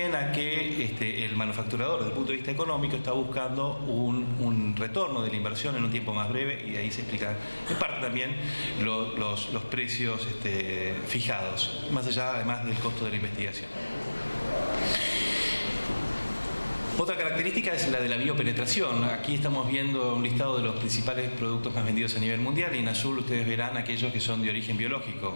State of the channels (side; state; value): both; inverted; correlation -1.00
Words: a que el manufacturador, desde el punto de vista económico, está buscando un retorno de la inversión en un tiempo más breve, y de ahí se explica en parte también los precios fijados, más allá además del costo de la investigación. Otra característica es la de la biopenetración. Aquí estamos viendo un listado de los principales productos más vendidos a nivel mundial, y en azul ustedes verán aquellos que son de origen biológico.